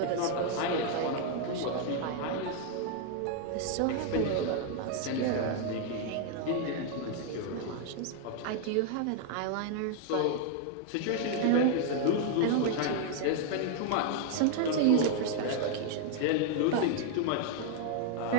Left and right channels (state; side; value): different; both; correlation 0.00